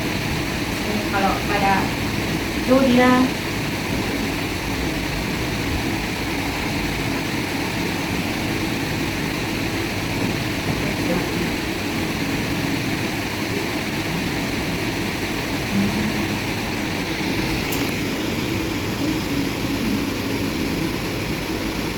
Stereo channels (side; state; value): both; identical; correlation 1.00